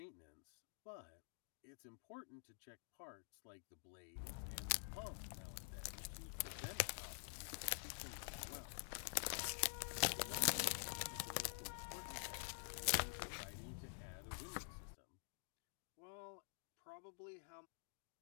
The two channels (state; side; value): silent; right; digital silence